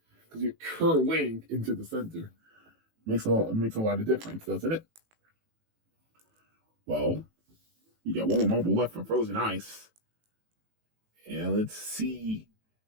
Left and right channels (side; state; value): left; late; 18 ms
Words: because you're curling into the center. Makes a lot of difference, doesn't it? Well, you got one more marble left for Frozen Ice. And let's see